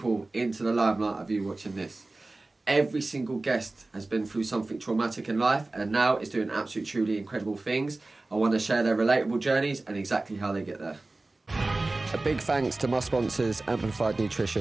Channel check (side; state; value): left; quieter; 3.1 dB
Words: into the limelight of you watching this. Every single guest has been through something traumatic in life and now is doing absolutely truly incredible things. I want to share their relatable journeys and exactly how they get there. A big thanks to my sponsors, Amplified